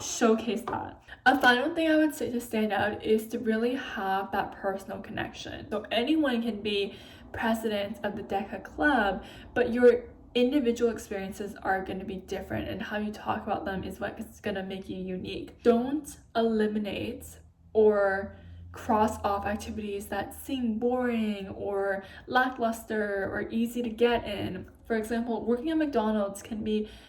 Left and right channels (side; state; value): both; identical; correlation 1.00